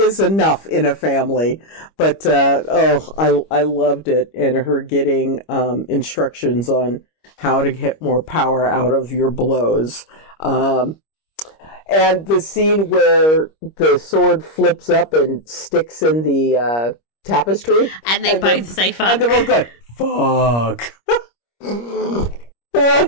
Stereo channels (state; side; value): late; right; 25 ms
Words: enough in a family. But, I loved it. And her getting instructions on how to get more power out of your blows. And the scene where the sword flips up and sticks in the tapestry. And they both say fuck. And they're both going, fuck.